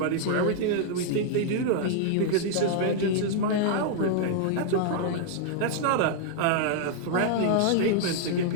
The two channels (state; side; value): different; both; correlation -0.01